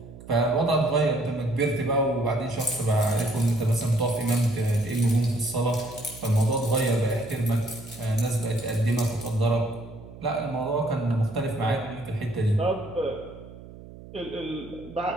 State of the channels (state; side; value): noise; right; hum, 17 dB below the sound